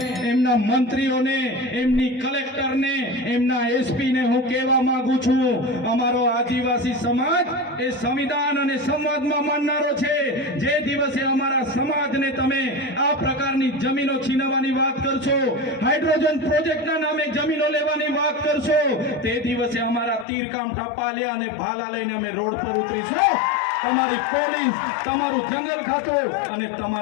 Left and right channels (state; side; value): drops out; right; at 20.2 s